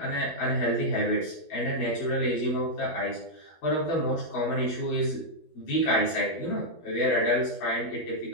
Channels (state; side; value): late; right; 12 ms